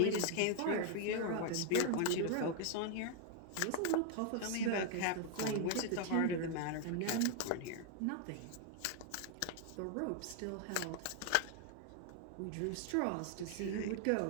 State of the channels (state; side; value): different; both; correlation 0.00